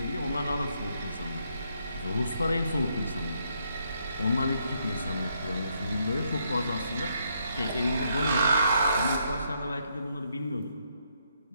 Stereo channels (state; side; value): inverted; both; correlation -0.75